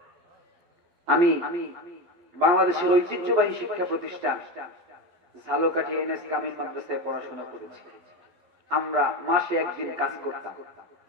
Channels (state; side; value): late; left; 12 ms